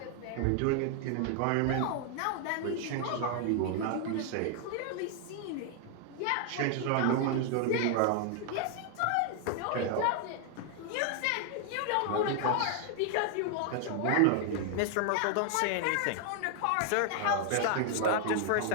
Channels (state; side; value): different; both; correlation 0.00